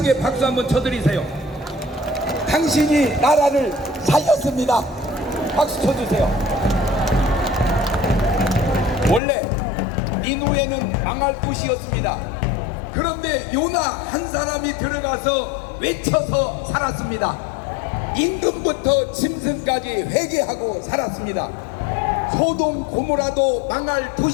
박수 한번 쳐드리세요. 당신이 나라를 살렸습니다. 박수 쳐주세요. 원래 니누에는 망할 곳이었습니다. 그런데 요나 한 사람이 들어가서 외쳐서 살았습니다. 임금부터 짐승까지 회개하고 살았습니다. 소돔 고모라도 망할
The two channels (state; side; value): drops out; right; at 9.2 s